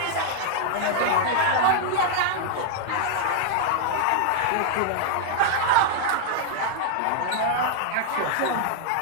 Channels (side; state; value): both; different; correlation -0.01